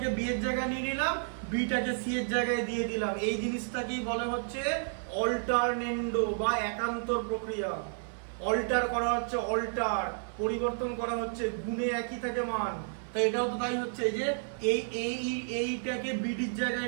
বি এর জায়গায় নিয়ে নিলাম, বিটাকে সি এর জায়গায় দিয়ে দিলাম, এই জিনিসটাকেই বলে হচ্ছে অল্টারনেন্ডো বা একান্তর প্রক্রিয়া। অল্টার করা হচ্ছে, অল্টার পরিবর্তন করা হচ্ছে, গুণে একই থাকে মান। তো এটাও তো তাই হচ্ছে যে এইটাকে বিডির জায়গায়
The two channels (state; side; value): silent; left; 57 dB below the other